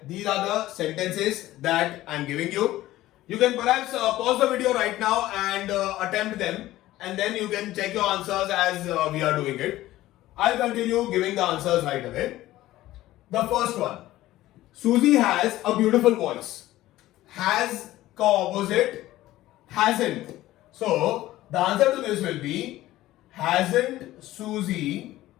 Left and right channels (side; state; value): right; quieter; 15.8 dB